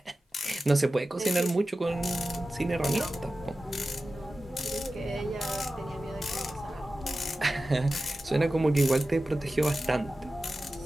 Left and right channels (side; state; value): both; normal; correlation 0.94